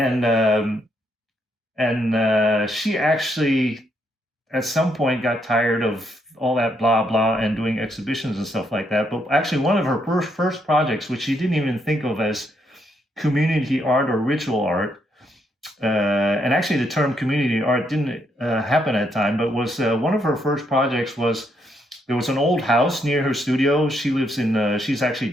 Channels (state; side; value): normal; both; correlation 0.76